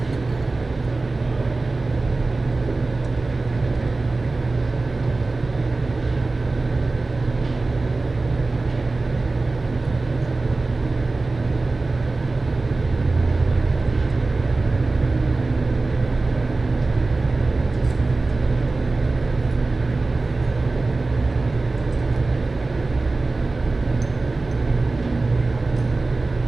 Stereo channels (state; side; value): quieter; left; 3.4 dB